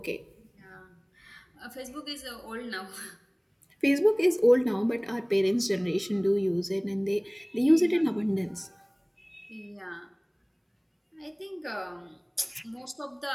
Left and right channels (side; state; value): both; identical; correlation 1.00